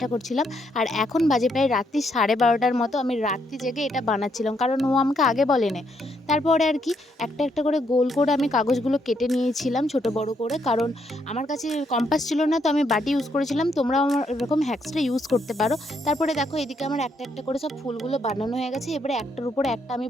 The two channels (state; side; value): normal; both; correlation 0.75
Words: করছিলাম। আর এখন বাজে প্রায় রাত্রি 12:30টার মতো। আমি রাত্রি জেগে এটা বানাচ্ছিলাম, কারণ ও আমাকে আগে বলেনি। তারপরে আর কি একটা একটা করে গোল করে আমি কাগজগুলো কেটে নিয়েছিলাম ছোট বড় করে, কারণ আমার কাছে কম্পাস ছিল না, তো আমি বাটি ইউজ করেছিলাম। তোমরাও আমার এরকম হ্যাক্সটা ইউজ করতে পারো। তারপরে দেখো এদিকে আমার একটা একটা করে সব ফুলগুলো বানানো হয়ে গেছে। এবারে একটার উপরে একটা আমি